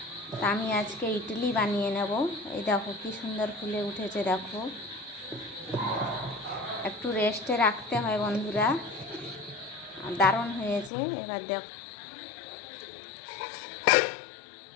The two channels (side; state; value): right; drops out; at 10.9 s